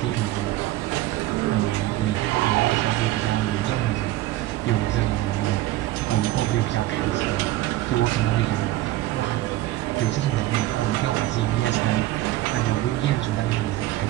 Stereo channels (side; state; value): left; quieter; 15.7 dB